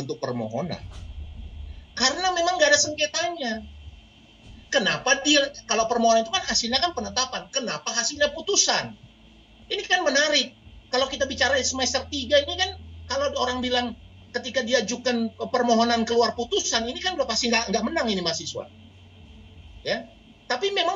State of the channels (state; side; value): identical; both; correlation 1.00